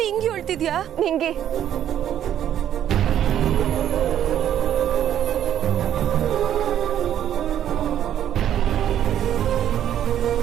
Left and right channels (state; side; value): quieter; left; 10.6 dB